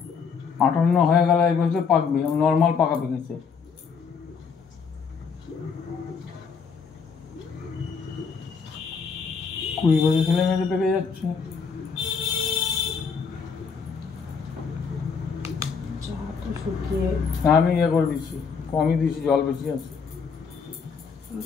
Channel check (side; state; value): right; quieter; 5.8 dB